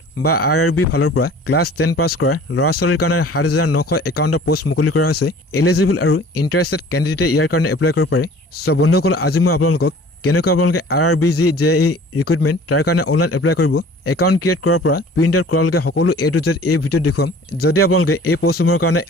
বা RRB ফালৰ পৰা ক্লাছ 10 পাছ কৰা ল'ৰা-ছোৱালীৰ কাৰণে 7951টা পোষ্ট মুকলি কৰা হৈছে। এলিজিবল আৰু ইণ্টাৰেষ্টেড কেণ্ডিডেটে ইয়াৰ কাৰণে এপ্লাই কৰিব পাৰে। সো বন্ধুসকল, আজি মই আপোনালোকক কেনেকৈ আপোনালোকে RRB যে এই ৰিক্ৰুটমেণ্ট তাৰ কাৰণে অনলাইন এপ্লাই কৰিব, একাউণ্ট ক্ৰিয়েট কৰাৰ পৰা প্ৰিণ্ট আউট কৰালৈকে সকলো A to Z এই ভিডিঅ'ত দেখুৱাম। যদি আপোনালোকে এই পোষ্টসমূহৰ কাৰণে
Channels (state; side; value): normal; both; correlation 0.48